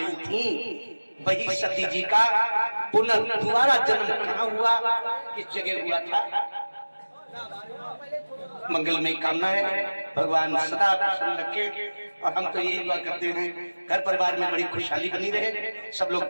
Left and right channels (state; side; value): inverted; both; correlation -1.00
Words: थी, वही सती जी का पुनः दोबारा जन्म कहाँ हुआ, किस जगह हुआ था। मंगलमय कामना है, भगवान सदा प्रसन्न रखे। और हम तो यही दुआ करते हैं घर परिवार में बड़ी खुशहाली बनी रहे, सब लोग